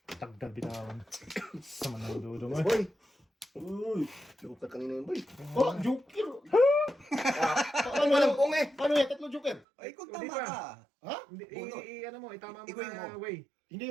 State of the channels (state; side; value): drops out; left; at 9.6 s